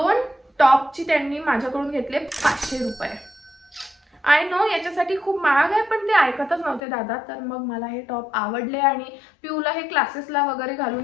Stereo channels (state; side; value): drops out; right; at 6.8 s